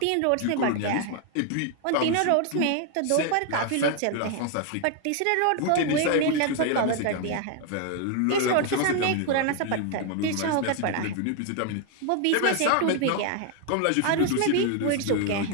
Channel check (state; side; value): different; both; correlation 0.01